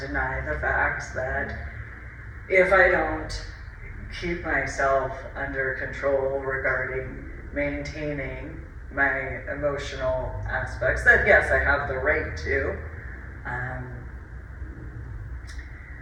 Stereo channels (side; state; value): both; identical; correlation 1.00